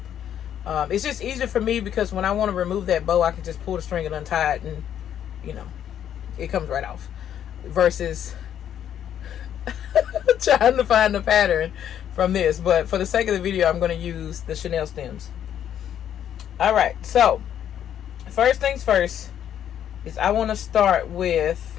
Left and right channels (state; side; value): quieter; right; 9.9 dB